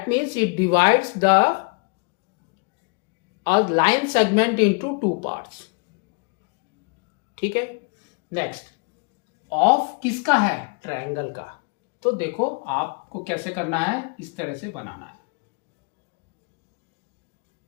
means it divides the a line segment into two parts. ठीक है. नेक्स्ट, ऑफ किसका है, ट्रायंगल का. तो देखो आपको कैसे करना है, इस तरह से बनाना है.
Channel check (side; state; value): right; quieter; 33.0 dB